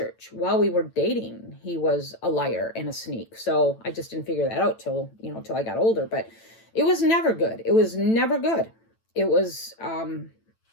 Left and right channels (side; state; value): right; late; 9.0 ms